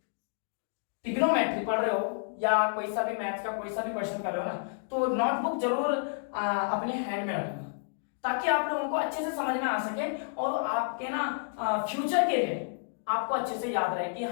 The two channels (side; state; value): right; silent; digital silence